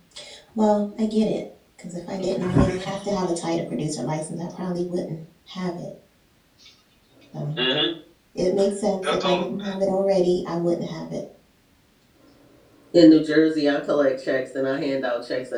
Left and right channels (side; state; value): both; identical; correlation 1.00